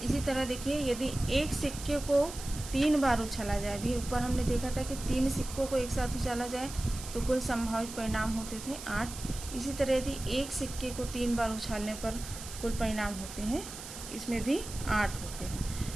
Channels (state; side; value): noise; right; hiss, 11 dB below the sound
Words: इसी तरह देखिए, यदि एक सिक्के को 3 बार उछाला जाए, भी ऊपर हमने देखा था कि 3 सिक्कों को एक साथ उछाला जाए तो कुल संभावित परिणाम होते थे 8। इसी तरह यदि एक सिक्के को 3 बार उछालने पर कुल परिणाम होते हैं, इसमें भी 8 होते हैं।